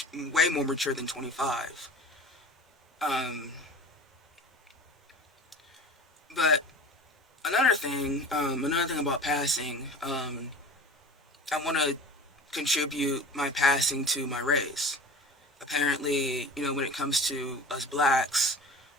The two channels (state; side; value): normal; both; correlation 0.37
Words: mature than 25. um but another thing about passing, I want to contribute my passing to my race. Apparently, when it comes to us blacks,